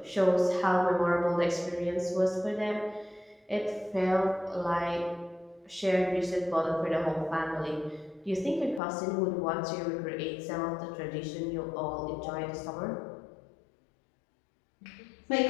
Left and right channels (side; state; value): right; drops out; at 8.8 s